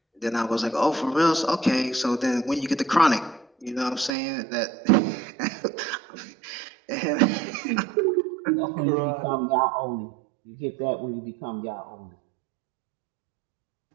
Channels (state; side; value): drops out; left; at 4.1 s